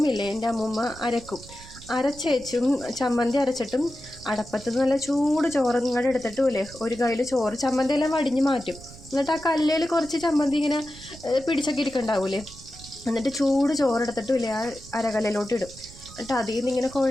ഇല്ലേ, എൻ്റെ അമ്മൂമ്മ അരച്ചേച്ചും ചമ്മന്തി അരച്ചിട്ടും അടപ്പത്ത് നല്ല ചൂട് ചോറ് ഇങ്ങോട്ട് എടുത്തിട്ടുമില്ലേ ഒരു കയ്യിൽ ചോറ് ചമ്മന്തി എല്ലാം വടിഞ്ഞ് മാറ്റും. എന്നിട്ട് ആ കല്ലിൽ കുറച്ച് ചമ്മന്തി ഇങ്ങനെ പിടിച്ചൊക്കെ ഇരിക്കണ്ടാവൂലേ, എന്നിട്ട് ചൂട് ചോറെടുത്തിട്ടുമില്ലേ ആ അരകല്ലിലോട്ട് ഇടും. എന്നിട്ട് അതിൽ നിന്ന് ഇങ്ങനെ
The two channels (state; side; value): noise; right; rumble, 18 dB below the sound